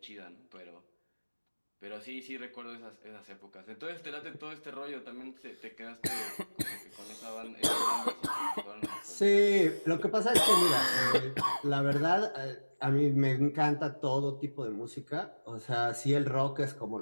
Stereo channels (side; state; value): both; inverted; correlation -1.00